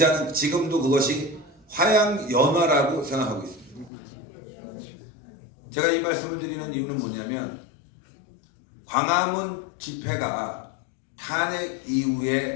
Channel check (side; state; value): right; drops out; at 3.9 s